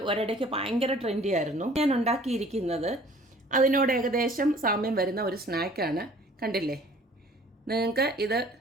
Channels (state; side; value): normal; both; correlation 0.52